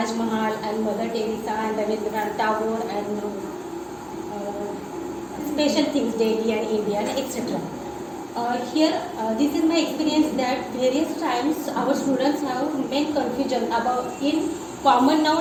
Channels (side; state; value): both; identical; correlation 1.00